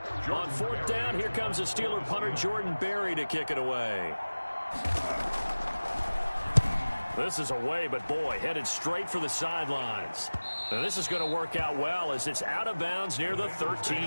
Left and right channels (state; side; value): inverted; both; correlation -1.00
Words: On fourth down, here comes a Steeler punter, Jordan Berry, to kick it away. This is away, but boy, headed straight for the sidelines. Now this is going to work out well as it's out of bounds near the